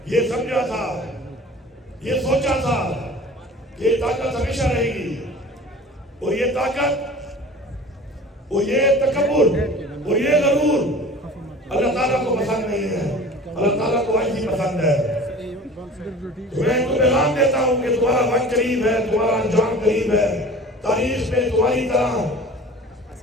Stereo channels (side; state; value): both; normal; correlation 0.41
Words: یہ سمجھا تھا یہ سوچا تھا کہ یہ طاقت ہمیشہ رہے گی اور یہ طاقت اور یہ تکبر اور یہ غرور اللہ تعالیٰ کو پسند نہیں ہے اللہ تعالیٰ کو عاجزی پسند ہے میں ان کو پیغام دیتا ہوں کہ تمہارا وقت قریب ہے تمہارا انجام قریب ہے تاریخ میں تمہاری طرح